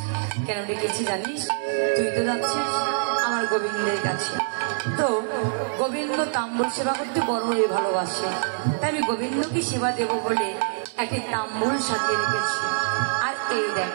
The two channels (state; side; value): silent; left; digital silence